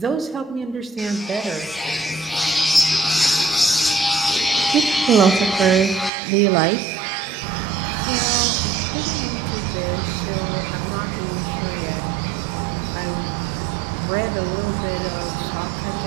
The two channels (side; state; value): left; drops out; at 6.1 s